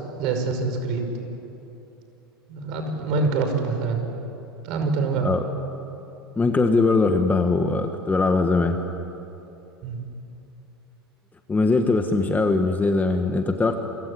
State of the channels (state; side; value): normal; both; correlation 0.61